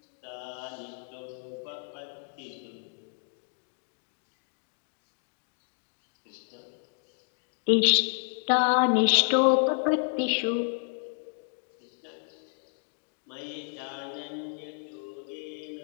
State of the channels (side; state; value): right; silent; 57 dB below the other